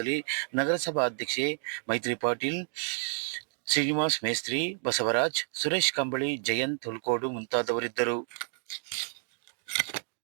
ನಗರಸಭಾ ಅಧ್ಯಕ್ಷೆ ಮೈತ್ರಿ ಪಾಟೀಲ್, ಶ್ರೀನಿವಾಸ್ ಮೇಸ್ತ್ರಿ, ಬಸವರಾಜ್, ಸುರೇಶ್ ಕಂಬಳಿ, ಜಯಂತ್ ಹುಲ್ಕೋಡು ಮುಂತಾದವರಿದ್ದರು.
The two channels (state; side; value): silent; left; digital silence